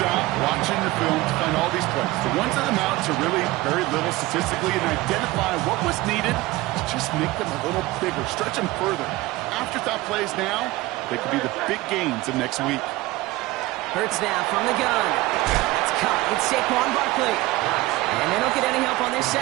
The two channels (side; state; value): left; quieter; 19.2 dB